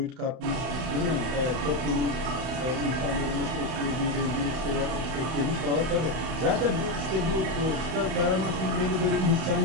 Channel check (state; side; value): late; left; 31 ms